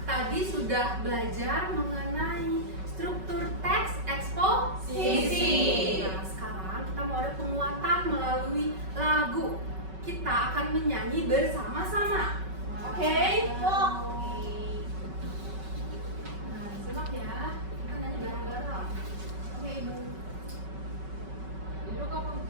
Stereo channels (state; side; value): late; left; 5.3 ms